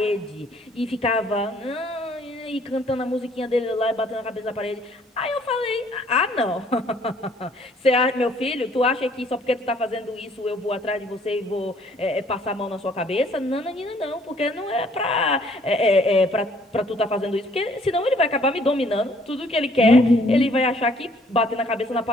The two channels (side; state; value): both; normal; correlation 0.61